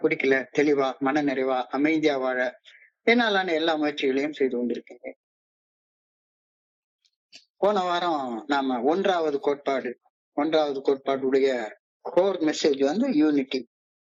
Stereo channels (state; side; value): identical; both; correlation 1.00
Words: குடிக்கல, தெளிவா, மன நிறைவா, அமைதியா வாழ என்னாலான எல்லா முயற்சிகளையும் செய்து கொண்டிருக்கேன். போன வாரம் நாம ஒன்றாவது கோட்பாடுடைய கோர் மெசேஜ் வந்து unity.